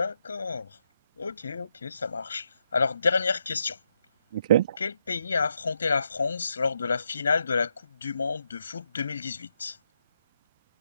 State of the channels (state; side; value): inverted; both; correlation -0.80